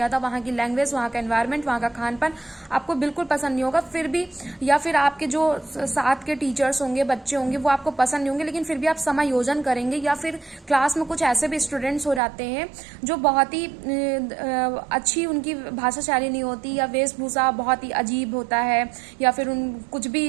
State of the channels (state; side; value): drops out; left; at 12.2 s